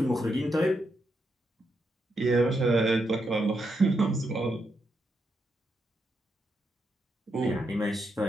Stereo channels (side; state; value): both; normal; correlation 0.82